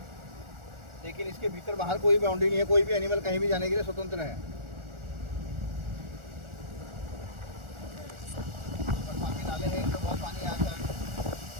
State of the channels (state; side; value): late; left; 1.4 ms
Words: लेकिन इसके भीतर बाहर कोई बाउंड्री नहीं है, कोई भी एनिमल कहीं भी जाने के लिए स्वतंत्र है। बरसाती नाले हैं, इनमें बहुत पानी आता है